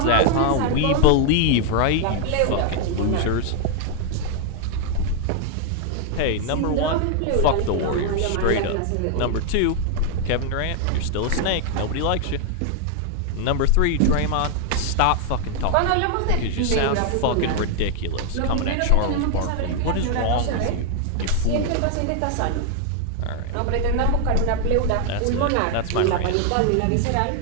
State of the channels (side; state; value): both; different; correlation 0.00